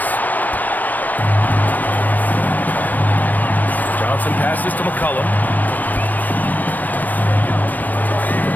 Johnson passes to McCollum.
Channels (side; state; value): right; late; 0.086 ms